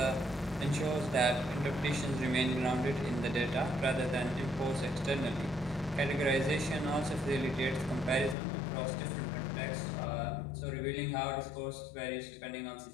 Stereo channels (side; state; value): right; drops out; at 8.3 s